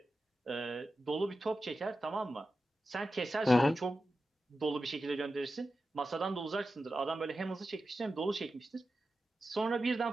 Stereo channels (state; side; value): normal; both; correlation 0.92